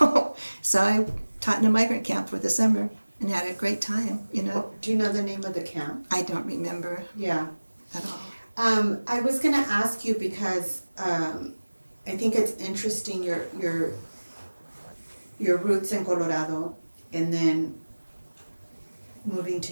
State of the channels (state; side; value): inverted; both; correlation -1.00